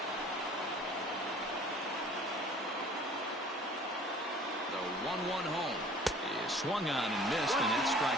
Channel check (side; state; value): both; normal; correlation 0.49